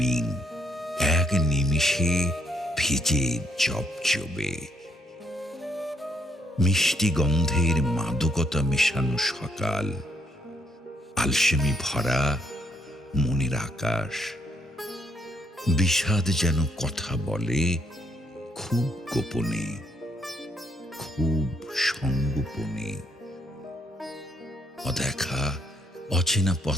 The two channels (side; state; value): both; normal; correlation 0.72